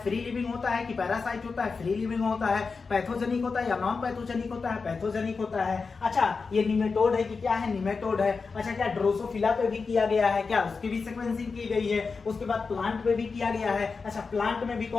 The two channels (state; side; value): quieter; right; 4.7 dB